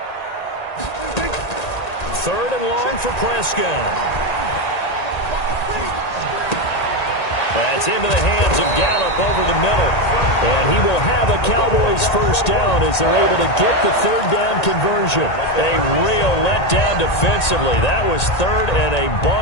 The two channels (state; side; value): late; right; 1.8 ms